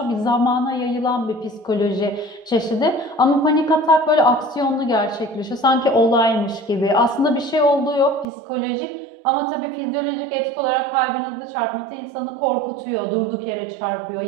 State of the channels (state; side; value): drops out; left; at 8.2 s